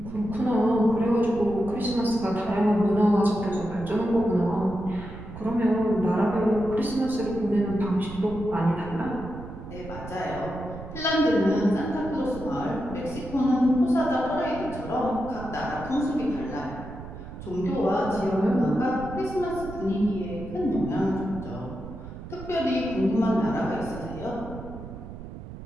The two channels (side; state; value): right; noise; rumble, 12 dB below the sound